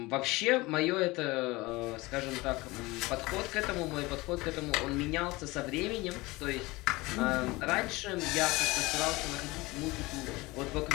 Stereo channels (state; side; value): quieter; right; 21.8 dB